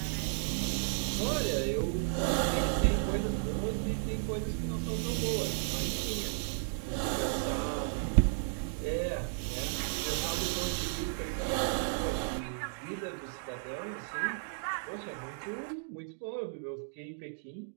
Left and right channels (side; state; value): left; silent; digital silence